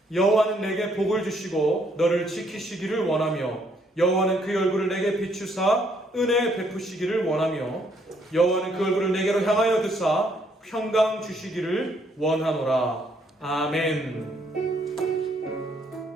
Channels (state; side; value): normal; both; correlation 0.69